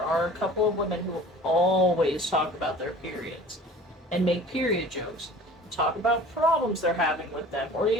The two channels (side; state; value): both; normal; correlation 0.45